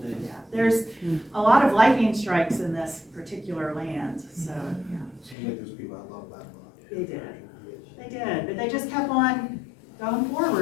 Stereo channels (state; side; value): drops out; right; at 5.4 s